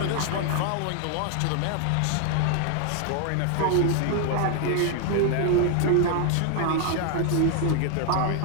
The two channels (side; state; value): both; different; correlation 0.00